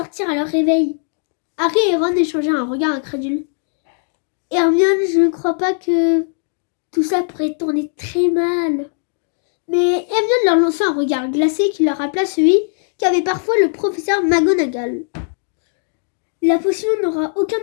à leur réveil. Harry et Ron échangèrent un regard incrédule. Hermione, je ne crois pas que tout ça pourrait tourner très mal. Mais Hermione leur lança un regard glacé qui leur rappela celui qu'avait parfois le professeur McGonagall. La potion n'aura aucun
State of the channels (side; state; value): right; silent; digital silence